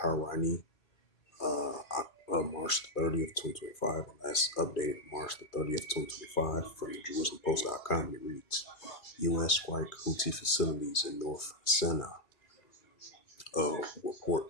March 30th, 2025, and that's updated March the 30th, 2025 from the JerusalemPost.com. And it reads, U.S. strike Houthi facilities in North Sinai. Report,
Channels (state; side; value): late; right; 2.4 ms